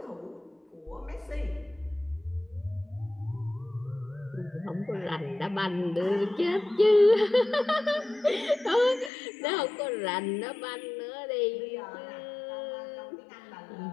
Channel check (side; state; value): right; drops out; at 9.1 s